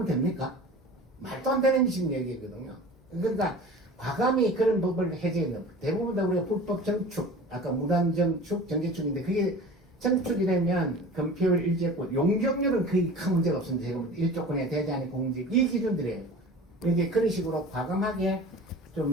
됩니까? 말도 안 되는 지금 얘기거든요. 그러니까, 과감히 그런 법을 해제해야 대부분 다 우리가 불법 정축, 아까 무단정축, 정제축인데, 그게 정축이 되면 건폐율 일제권, 용적률은 거의 큰 문제가 없습니다. 지금 1조권에 대제한이 공직, 이 기준들이에요. 이제 그런 식으로 과감하게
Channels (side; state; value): both; normal; correlation 0.39